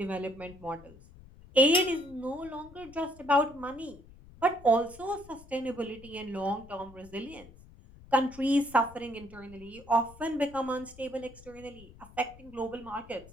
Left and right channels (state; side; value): noise; left; rumble, 21 dB below the sound